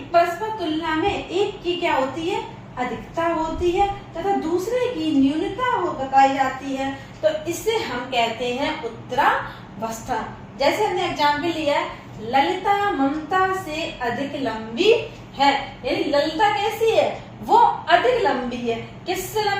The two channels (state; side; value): identical; both; correlation 1.00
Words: परस्पर तुलना में एक की क्या होती है, अधिकता होती है, तथा दूसरे की न्यूनता बताई जाती है, तो इससे हम कहते हैं उत्तरावस्था। जैसे हमने एग्जाम्पल लिया है, ललिता ममता से अधिक लंबी है, यानी ललिता कैसी है, वो अधिक लंबी है। किससे